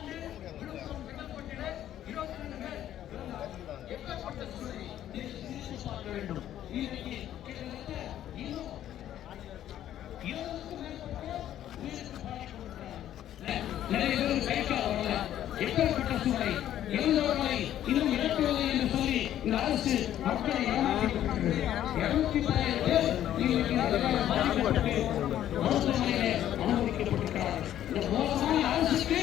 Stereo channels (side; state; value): right; quieter; 11.7 dB